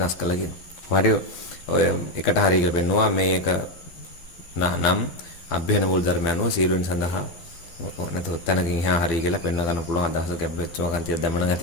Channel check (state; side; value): late; right; 12 ms